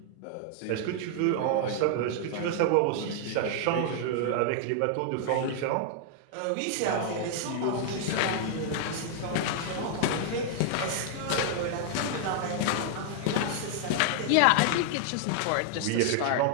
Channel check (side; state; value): both; different; correlation 0.00